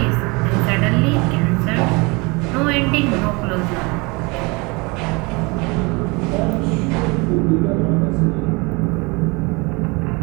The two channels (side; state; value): left; quieter; 27.1 dB